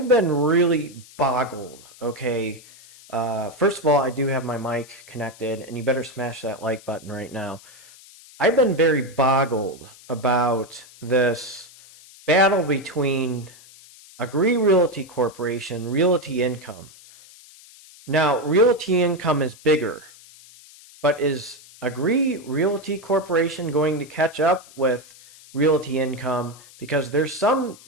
been really boggled, okay? First of all, I do have my mic connected, and you better smash that like button right now. I've been very boggled about this battle between Abbvie Realty Corporation, Realty Income. Now, Realty Income is bigger, but is Abbvie Realty Corporation going to catch up with Realty Income? Because there's some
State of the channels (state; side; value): noise; left; hiss, 22 dB below the sound